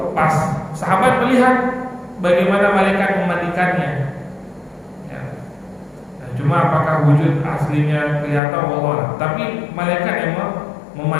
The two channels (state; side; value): drops out; right; at 8.4 s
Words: pas sahabat melihat bagaimana malaikat memandikannya, ya. Nah, cuma apakah wujud aslinya kelihatan Allah, tapi malaikat yang